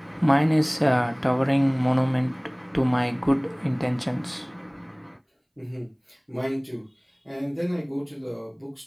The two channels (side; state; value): both; identical; correlation 1.00